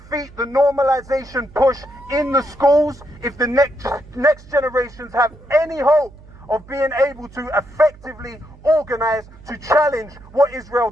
the normalization push in the schools if the next generations have any hope of being able to effectively organize to challenge what Israel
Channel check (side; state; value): right; noise; hum, 21 dB below the sound